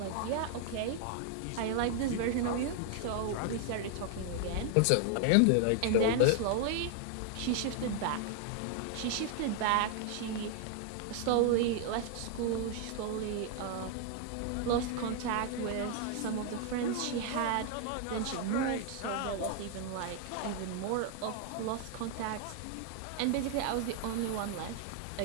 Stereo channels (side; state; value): both; different; correlation 0.00